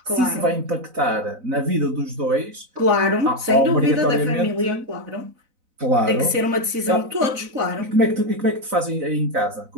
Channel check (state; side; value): late; left; 4.0 ms